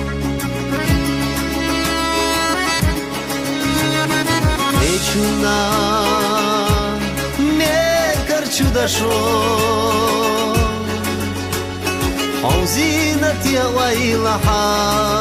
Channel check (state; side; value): identical; both; correlation 1.00